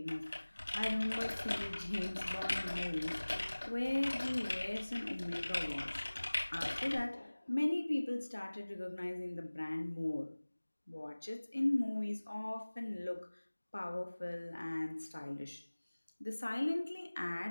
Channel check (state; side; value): inverted; both; correlation -1.00